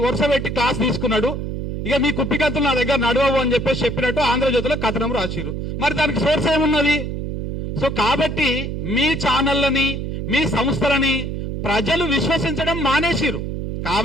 వరుస పెట్టి క్లాస్ తీసుకున్నాడు, ఇక మీ కుప్పికత్తులు నా దగ్గర నడవవు అని చెప్పేసి చెప్పినట్టు ఆంధ్రజ్యోతిలో కథనం రాసిరు. మరి దానికి సోర్స్ ఏమున్నది? సో కాబట్టి మీ ఛానళ్ళని, మీ సంస్థలని ప్రజలు విశ్వసించడం మానేసిరు.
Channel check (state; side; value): noise; right; hum, 4 dB below the sound